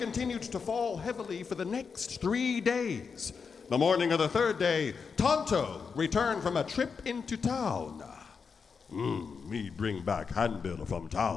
to fall heavily for the next 3 days. The morning of the third day, Tonto returned from a trip into town. Me bring back handbill from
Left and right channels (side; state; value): right; quieter; 5.6 dB